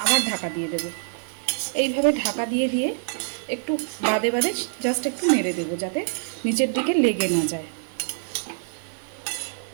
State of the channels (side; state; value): left; silent; digital silence